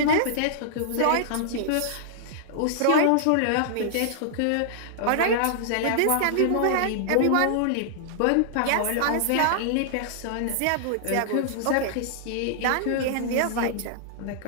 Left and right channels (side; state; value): both; different; correlation -0.01